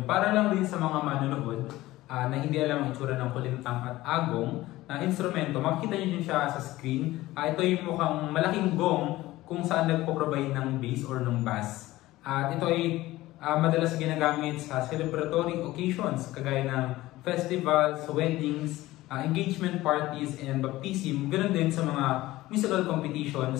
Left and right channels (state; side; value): quieter; right; 17.3 dB